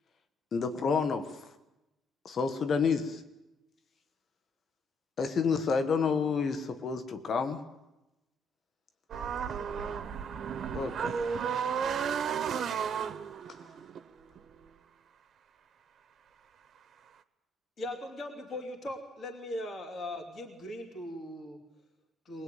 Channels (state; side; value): normal; both; correlation 0.69